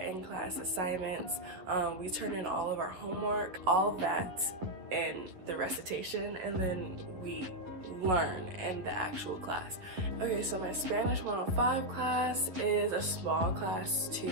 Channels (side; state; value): left; late; 11 ms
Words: assignments, we turn in all of our homework, all of that in the recitation, and then we learn in the actual class. Okay, so my Spanish 105 class is a small class